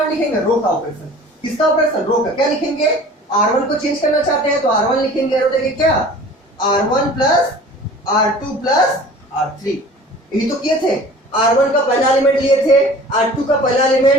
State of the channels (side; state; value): both; normal; correlation 0.44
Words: लिखेंगे? रो का ऑपरेशन। किसका ऑपरेशन? रो का। क्या लिखेंगे? R1 को चेंज करना चाहते हैं तो R1 लिखेंगे, और देखिए क्या? R1 plus R2 plus R3। यही तो किए थे। R1 का पहला एलिमेंट लिए थे, R2 का पहला